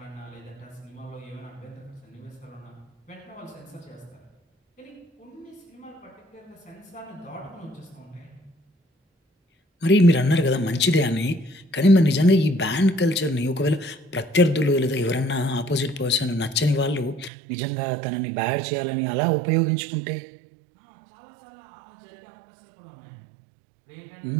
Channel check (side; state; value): left; drops out; at 17.3 s